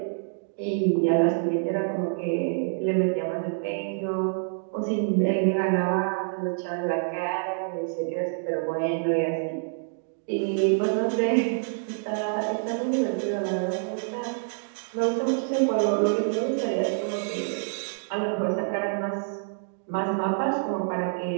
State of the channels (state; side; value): silent; left; digital silence